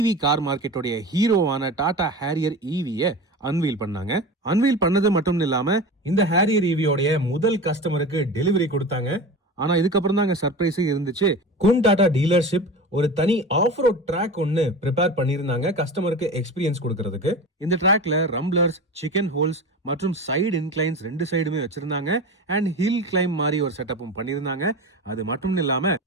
கார் மார்க்கெட்டோடைய ஹீரோவான டாடா ஹேரியர் ஈவிய அன்வீல் பண்ணாங்க. அன்வீல் பண்ணது மட்டும் இல்லாம இந்த ஹேரியர் ஈவியோடைய முதல் கஸ்டமருக்கு டெலிவரி கொடுத்தாங்க. ஆனா இதுக்கப்புறம் தான் சர்ப்ரைஸே இருந்துச்சு. குன் டாடா டீலர்ஷிப் ஒரு தனி ஆஃப் ரோட் ட்ராக் ஒன்னு ப்ரிப்பேர் பண்ணிருந்தாங்க கஸ்டமருக்கு எக்ஸ்பீரியன்ஸ் கொடுக்கறதுக்கு. இந்த ட்ராக்ல ரம்ப்ளர்ஸ், சிக்கன் ஹோல்ஸ் மற்றும் சைடு இன்க்ளைன்ஸ் ரெண்டு சைடுமே வச்சிருந்தாங்க. அண்ட் ஹில் கிளைம் மாதிரி ஒரு செட்டப்பும் பண்ணிருந்தாங்க. அது மட்டும் இல்லாம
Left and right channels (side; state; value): both; normal; correlation 0.30